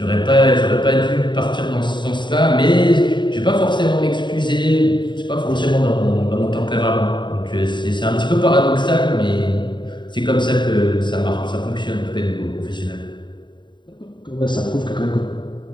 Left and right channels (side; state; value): right; late; 0.22 ms